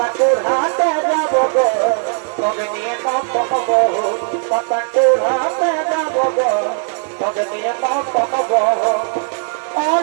হাতে যাব গো তোকে নিয়ে নাম পাবো পাতাকুর হাতে যাব গো তোকে নিয়ে নাম পাবো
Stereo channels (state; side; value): silent; left; 56 dB below the other